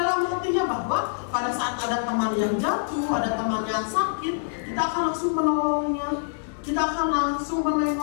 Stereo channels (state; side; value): silent; right; digital silence